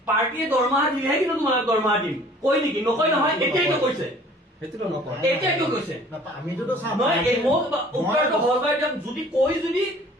পাৰ্টিয়ে দৰমহা দিলেহে কিন্তু তোমালোক দৰমহা দিম কয় নেকি নকয় নহয় এতিয়াইতো কৈছে সেইটোতো নকয় এতিয়াইতো কৈছে আমিতো চাম নহয় এই মোক উত্তৰটো সহজভাৱে দিয়ক যদি কৈ যদি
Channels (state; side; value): normal; both; correlation 0.51